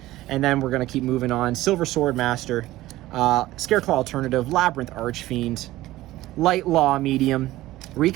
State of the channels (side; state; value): left; quieter; 16.5 dB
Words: And then we're going to keep moving on. Silver Sword Master, Scareclaw Alternative, Labyrinth Archfiend, Light Law Medium,